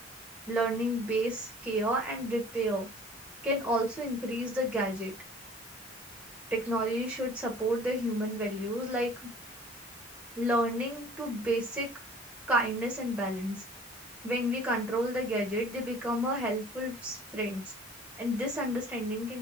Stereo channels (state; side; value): normal; both; correlation 0.49